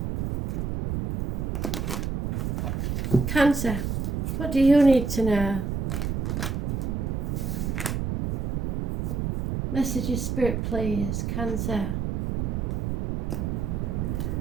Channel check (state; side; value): noise; right; rumble, 1 dB below the sound